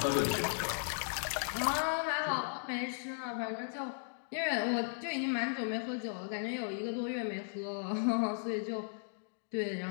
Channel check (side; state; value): right; silent; digital silence